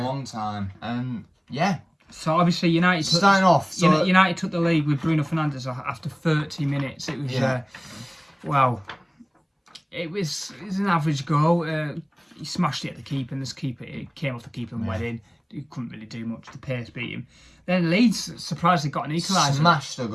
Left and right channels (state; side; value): identical; both; correlation 1.00